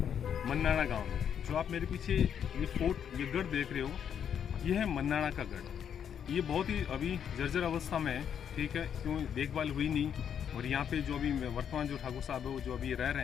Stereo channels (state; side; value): quieter; right; 8.4 dB